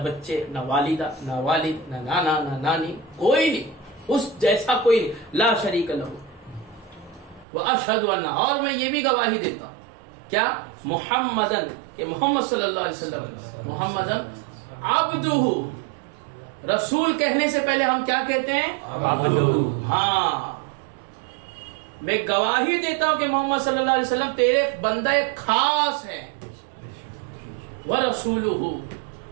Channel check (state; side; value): drops out; left; at 7.5 s